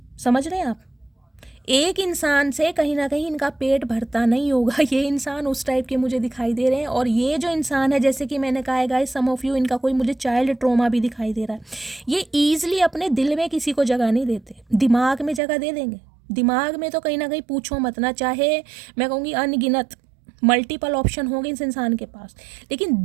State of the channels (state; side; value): drops out; left; at 15.4 s